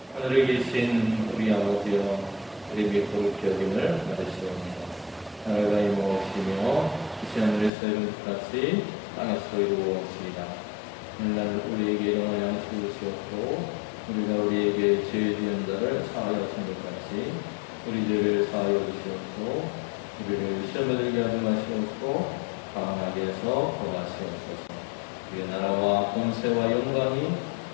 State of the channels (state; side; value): drops out; right; at 7.7 s